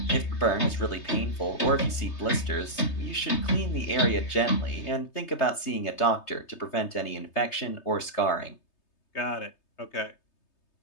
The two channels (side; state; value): right; late; 3.3 ms